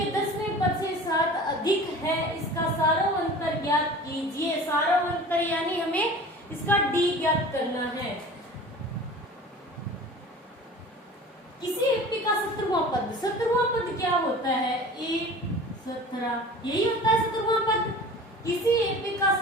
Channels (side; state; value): both; normal; correlation 0.40